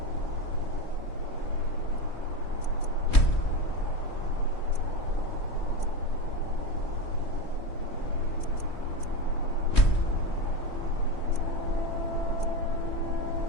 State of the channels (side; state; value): right; late; 3.1 ms